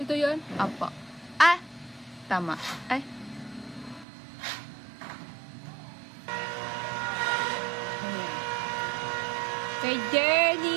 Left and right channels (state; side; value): drops out; left; at 4.0 s